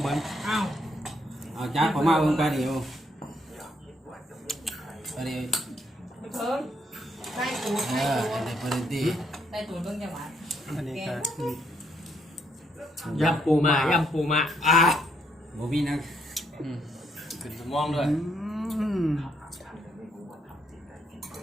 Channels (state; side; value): normal; both; correlation 0.73